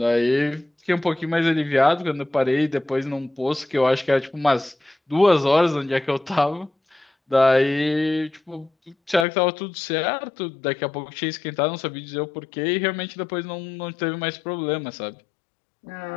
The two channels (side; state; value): right; drops out; at 9.2 s